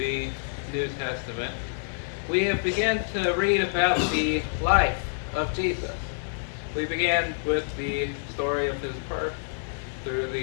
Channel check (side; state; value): right; silent; digital silence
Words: New Testament, we have begun to read about the life of Jesus. We began with the story of his birth through